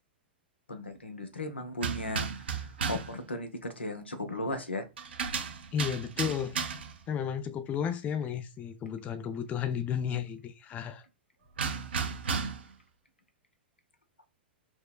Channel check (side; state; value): both; normal; correlation 0.07